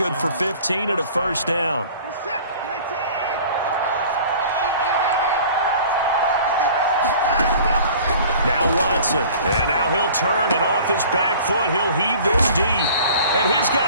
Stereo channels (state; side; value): inverted; both; correlation -0.46